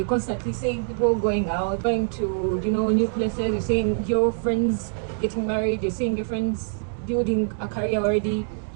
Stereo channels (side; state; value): left; silent; digital silence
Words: constantly seeing people going out, going to, new places. You're seeing your friends getting married. You're seeing your friends building a career already,